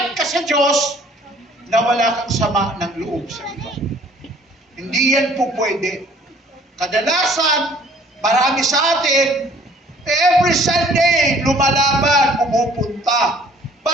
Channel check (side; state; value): both; normal; correlation 0.56